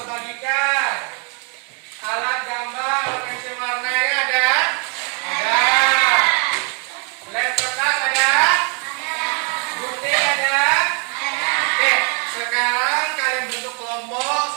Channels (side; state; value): left; quieter; 37.4 dB